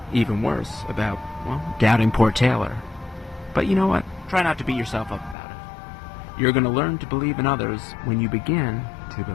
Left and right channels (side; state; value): right; drops out; at 5.4 s